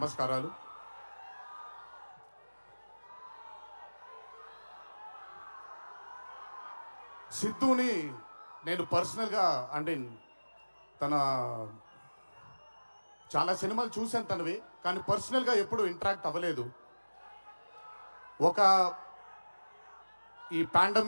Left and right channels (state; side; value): inverted; both; correlation -1.00